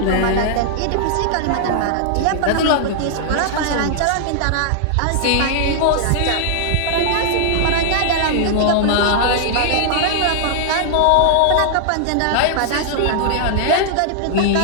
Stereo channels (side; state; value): both; different; correlation -0.01